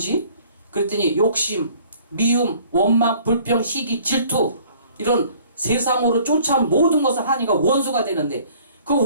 그랬더니 욕심, 미움, 원망, 불평, 시기, 질투 이런 세상으로 쫓아온 모든 것을 하니까 원수가 되는데 그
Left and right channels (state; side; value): inverted; both; correlation -0.55